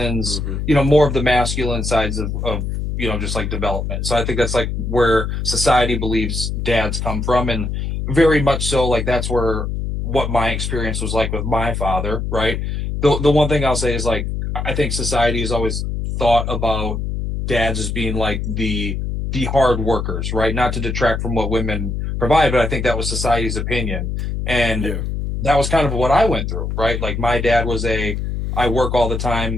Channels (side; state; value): left; noise; hum, 3 dB below the sound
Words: Mm-hmm. more of the masculine sides of just like development. So I think that's like where society believes dads come from, and very much so like that's where what my experience was like with my father, right? The one thing I'll say is like I think society has always thought about dads as being like the hard workers, right? Not to detract from what women provide, but I think that was society's opinion. And Yeah. that was kind of what I went through, right? Like my dad was I work all the